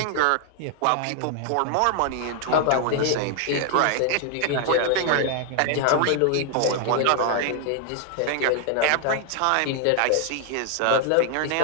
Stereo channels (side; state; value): both; different; correlation 0.00